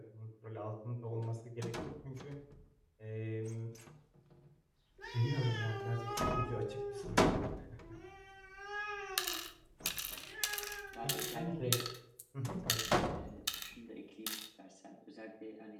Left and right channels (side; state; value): both; identical; correlation 1.00